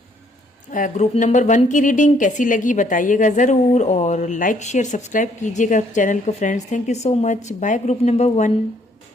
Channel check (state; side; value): normal; both; correlation 0.66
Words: ग्रुप नंबर 1 की रीडिंग। कैसी लगी बताइएगा ज़रूर, और लाइक शेयर सब्सक्राइब कीजिएगा चैनल को friends. Thank you so much. Bye group number 1।